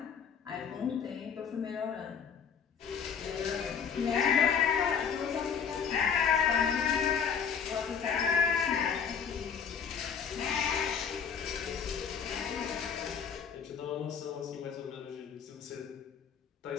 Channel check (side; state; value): right; quieter; 7.1 dB